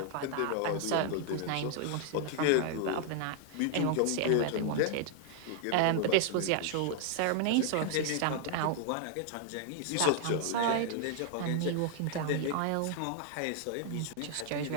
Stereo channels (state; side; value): different; both; correlation 0.00